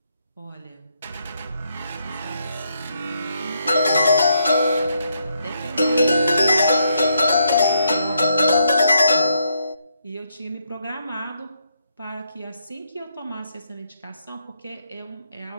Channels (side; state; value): both; inverted; correlation -0.76